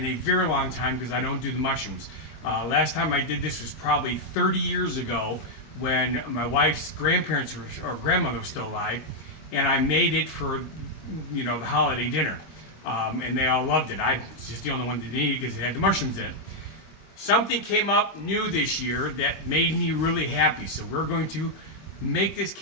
a very long time because I don't do the mushrooms. Last time I did this was probably 30 years ago when my wife's grandparents or grandmother was still alive, and I made it for, the holiday dinner. And they all loved it. I was just the only one that didn't eat it because it had the mushrooms in it. Something came up new this year that made me really happy. So we're going to make this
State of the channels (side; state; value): right; late; 25 ms